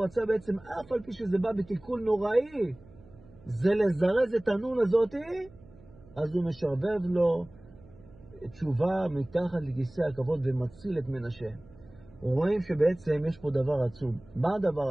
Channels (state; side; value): noise; right; hum, 24 dB below the sound